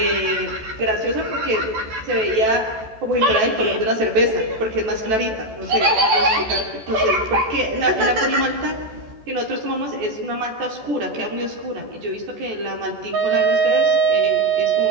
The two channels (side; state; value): left; late; 14 ms